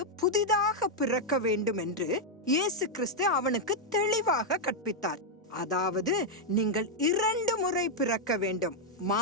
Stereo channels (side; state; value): both; normal; correlation -0.01